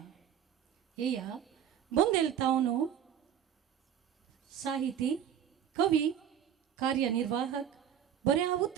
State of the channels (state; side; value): quieter; left; 9.3 dB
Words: येया बोदेल तावन साहिती कवी कार्यनिर्वाहक बऱ्या